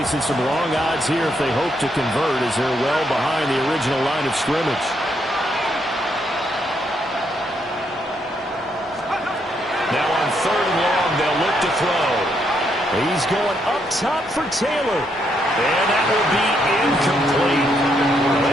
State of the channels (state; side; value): normal; both; correlation 0.76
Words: some long odds here if they hope to convert as they're well behind the original line of scrimmage. Now on 3rd and long, they'll look to throw. He's going up top for Taylor. And that will be incomplete.